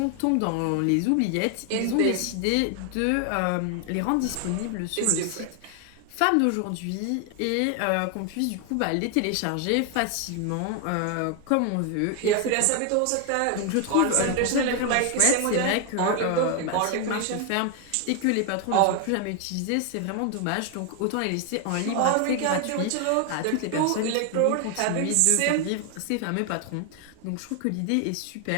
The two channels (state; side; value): different; both; correlation 0.00